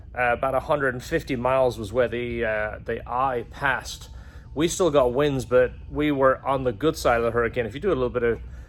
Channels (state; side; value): identical; both; correlation 1.00